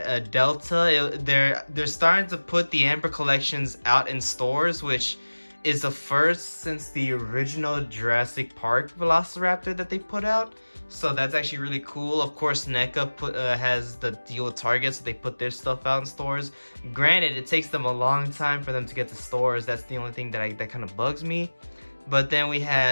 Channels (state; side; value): inverted; both; correlation -1.00